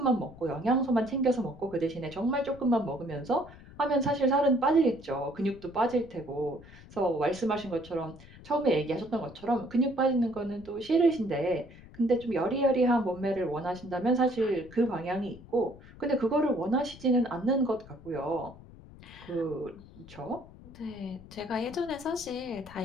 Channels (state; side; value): noise; left; rumble, 19 dB below the sound